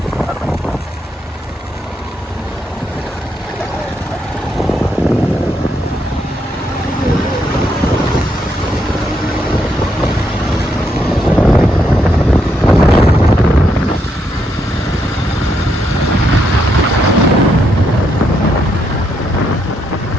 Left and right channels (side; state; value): both; normal; correlation 0.78